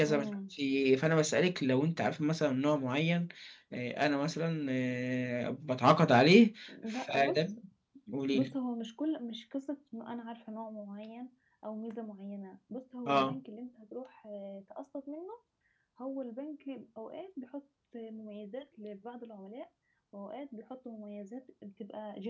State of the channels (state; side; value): identical; both; correlation 1.00